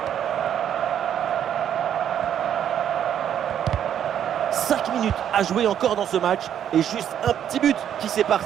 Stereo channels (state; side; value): quieter; left; 9.7 dB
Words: Cinq minutes à jouer encore dans ce match et juste un petit but qui sépare